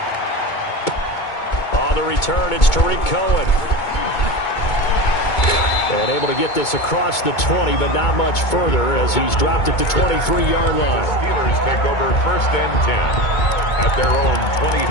On the return, it's Tariq Cohen. And able to get this across the 20, but not much further as he's dropped at the 23-yard line. The Steelers take over 1st and 10 at their own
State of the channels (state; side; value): late; right; 2.2 ms